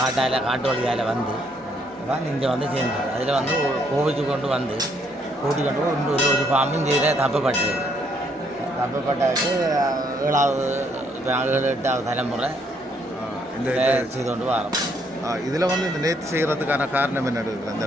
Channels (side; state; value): both; normal; correlation 0.70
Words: வழியால் வந்து தான் இங்கே வந்து சேர்ந்தது. அதில் வந்து கோவிச்சு கொண்டு வந்து கூட்டி கொண்டு இன்னொரு ஒரு பாம்பு இங்கே தப்பப்பட்டது. தப்பப்பட்டதுக்கு 7வது 8வது தலைமுறை இந்த செய்து கொண்டு வரோம். இதில் வந்து இந்த நேர்த்தி செய்கிறதுக்கான காரணம் என்ன இருக்குது அந்த